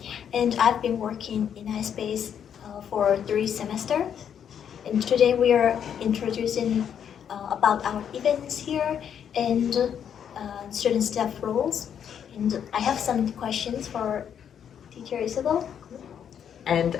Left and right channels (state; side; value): quieter; right; 8.5 dB